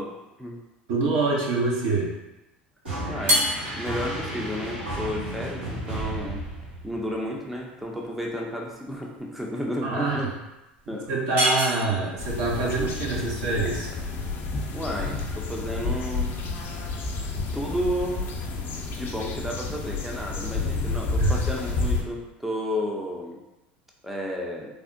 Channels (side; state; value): both; normal; correlation 0.34